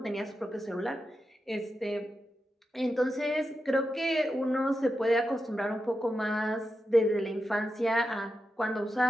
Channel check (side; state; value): both; normal; correlation 0.89